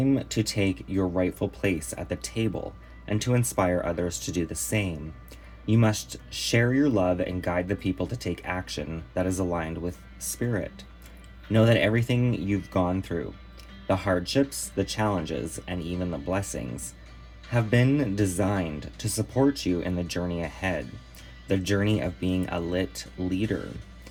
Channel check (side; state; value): both; identical; correlation 1.00